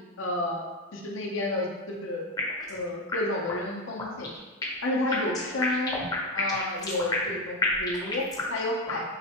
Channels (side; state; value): both; normal; correlation 0.10